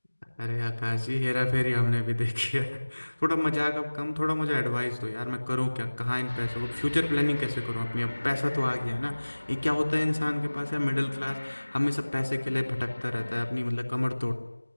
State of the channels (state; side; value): inverted; both; correlation -1.00